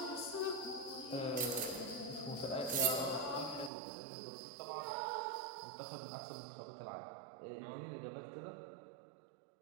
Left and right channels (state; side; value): drops out; left; at 3.7 s